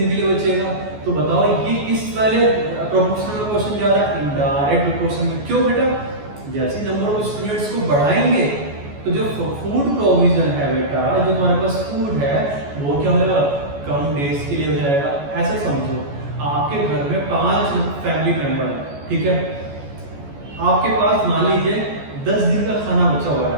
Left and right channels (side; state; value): left; late; 14 ms